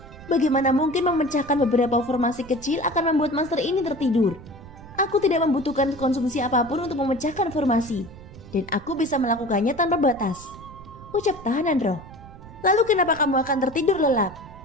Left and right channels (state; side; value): noise; right; rumble, 18 dB below the sound